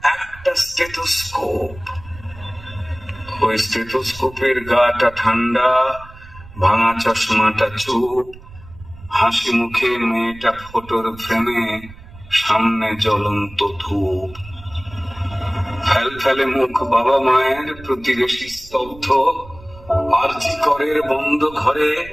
একটা স্টেথোস্কোপ। ওই স্টেথোস্কোপের গাটা ঠান্ডা, ভাঙা চশমাটা চুপ, হাসি মুখে মেয়েটা ফটোর ফ্রেমে, সামনে জ্বলন্ত ধূপ। ফেল ফেলে মুখ বাবা মায়ের, প্রতিবেশী স্তব্ধ, আরজি করের বন্ধ ঘরে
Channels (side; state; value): right; noise; rumble, 19 dB below the sound